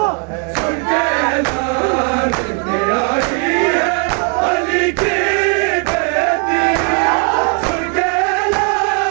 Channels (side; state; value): left; quieter; 40.0 dB